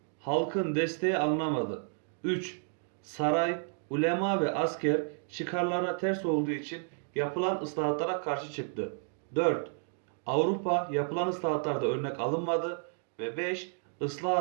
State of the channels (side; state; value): left; silent; 57 dB below the other